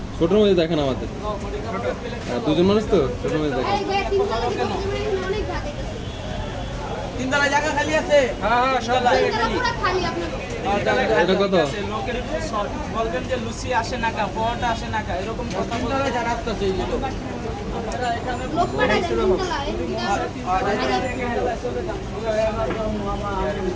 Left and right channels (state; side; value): identical; both; correlation 1.00